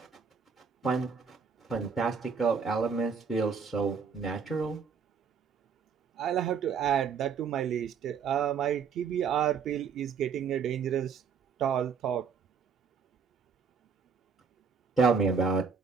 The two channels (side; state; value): left; quieter; 6.0 dB